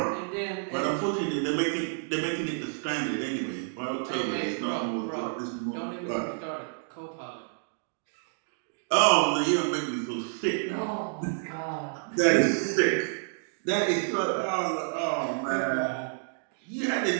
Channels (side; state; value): left; silent; digital silence